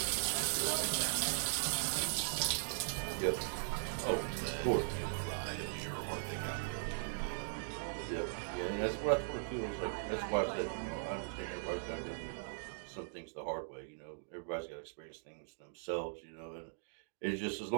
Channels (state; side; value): silent; left; digital silence